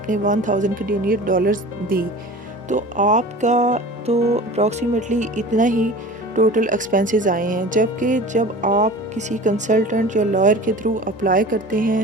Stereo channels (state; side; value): normal; both; correlation 0.38